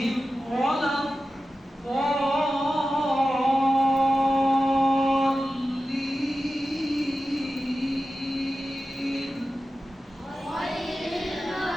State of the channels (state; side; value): normal; both; correlation 0.93